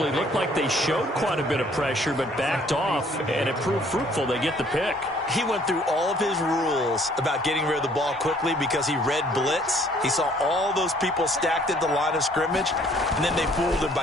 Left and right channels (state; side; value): normal; both; correlation 0.60